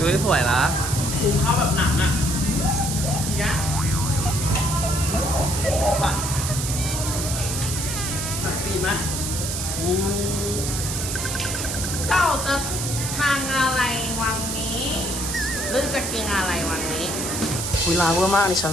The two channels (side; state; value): right; noise; hiss, 3 dB below the sound